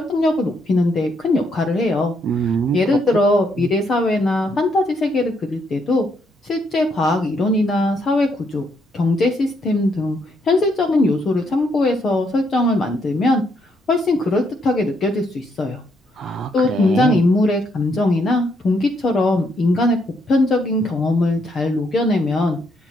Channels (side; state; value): both; normal; correlation 0.74